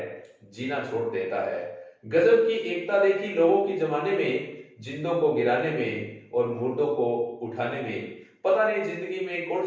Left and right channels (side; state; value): both; identical; correlation 1.00